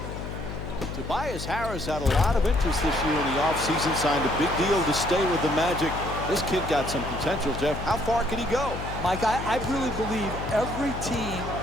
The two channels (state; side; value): noise; left; hum, 8 dB below the sound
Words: Tobias Harris had a lot of interest this year in the offseason, signed a big deal to stay with the Magic. This kid got some potential, Jeff. How far can he go? Mike, I really believe every team